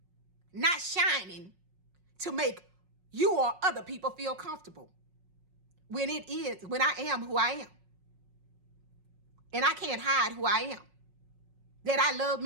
not shining to make you or other people feel comfortable when I am who I am. And I can't hide who I am. That I love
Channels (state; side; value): late; left; 5.5 ms